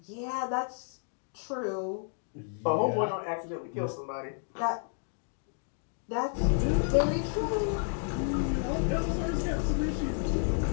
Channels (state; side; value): silent; right; 57 dB below the other